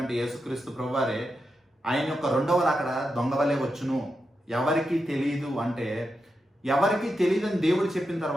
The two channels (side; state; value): both; normal; correlation 0.87